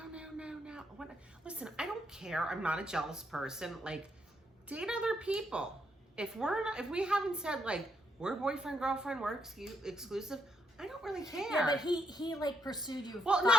What? Listen, I don't care. I'm not a jealous person. Like, date other people. If we haven't said, like, we're boyfriend, girlfriend, we're exclusive, I don't really care. Yeah, but he like pursued you. Well, 5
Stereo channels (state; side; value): normal; both; correlation 0.76